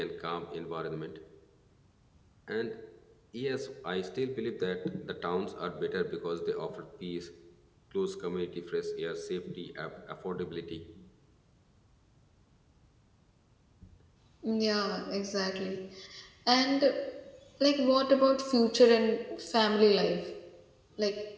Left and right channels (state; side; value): identical; both; correlation 1.00